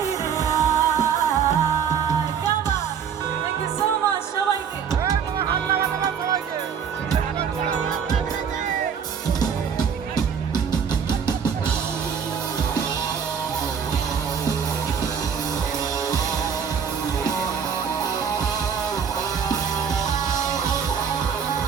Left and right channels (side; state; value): left; quieter; 7.2 dB